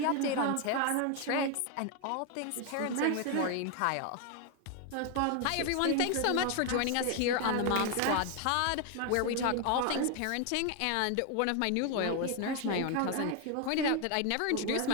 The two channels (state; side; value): different; both; correlation 0.01